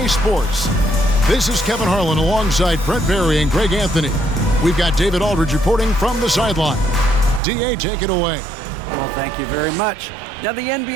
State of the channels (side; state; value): left; drops out; at 7.4 s